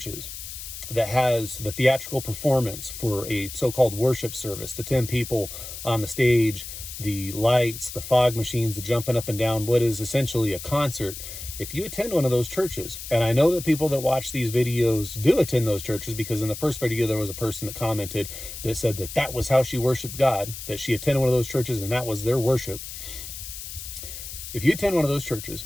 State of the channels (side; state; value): left; noise; hiss, 10 dB below the sound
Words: that has the theatrical performance for a so-called worship service, the 10 people on the stage, the lights, the fog machines, the jumping up and down, what is essentially a concert. If you attend one of those churches, and I know that people that watch these videos do attend those churches, because in the first video, there was a person that commented that said that that was how she worshiped God, that she attended one of those churches and that was their worship. If you attend one of those churches